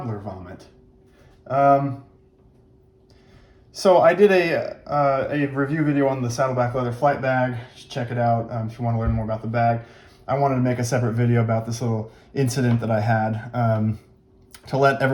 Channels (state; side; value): identical; both; correlation 1.00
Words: vomit. So I did a review video on the Saddleback leather flight bag. Check it out if you want to learn more about the bag. I wanted to make a separate video about this little incident that I had to let